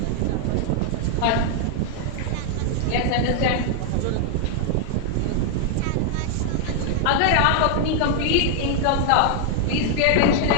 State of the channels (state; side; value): different; both; correlation 0.00